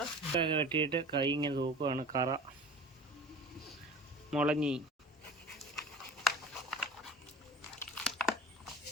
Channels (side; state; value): both; normal; correlation 0.40